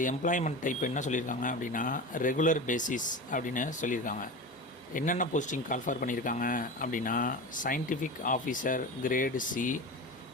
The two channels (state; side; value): normal; both; correlation 0.28